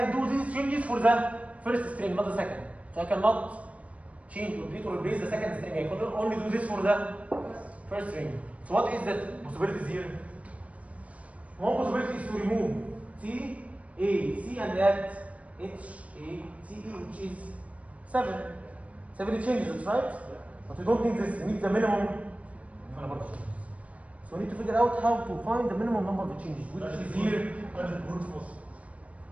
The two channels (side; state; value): left; late; 0.066 ms